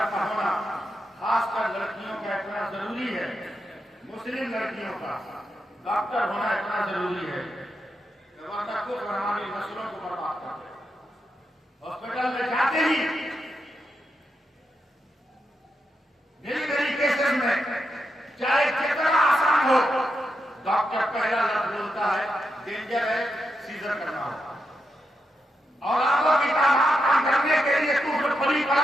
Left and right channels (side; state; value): both; normal; correlation 0.85